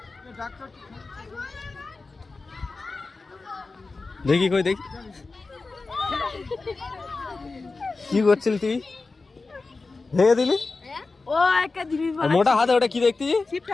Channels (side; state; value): right; quieter; 3.8 dB